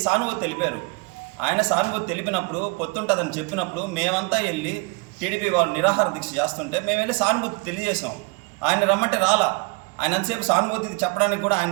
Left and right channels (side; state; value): left; quieter; 29.3 dB